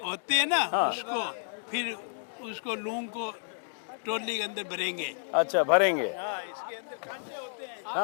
होते हैं ना, हाँ। उसको फिर उसको लूंग को टोली के अंदर भरेंगे। अच्छा, भरेंगे। हाँ, इसके अंदर कांटे होते हैं।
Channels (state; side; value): silent; right; digital silence